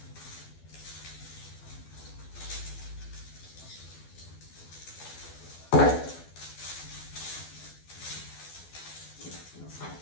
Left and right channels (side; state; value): right; late; 12 ms